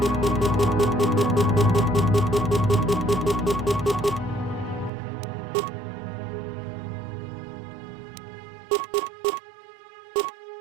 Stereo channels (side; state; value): left; drops out; at 4.9 s